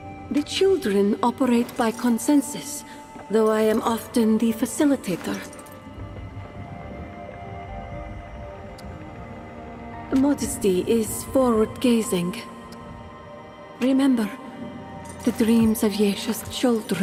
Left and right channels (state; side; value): identical; both; correlation 1.00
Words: The children operate by consensus, though I am often the facilitator. Modesty is forward-gazing. Remember, the dreams of Yesha's